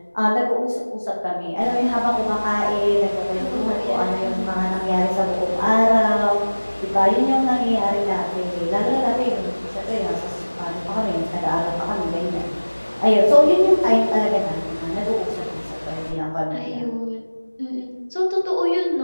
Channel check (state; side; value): inverted; both; correlation -1.00